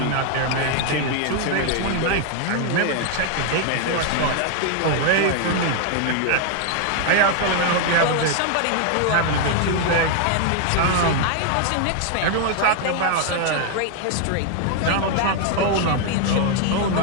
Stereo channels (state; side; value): different; both; correlation 0.00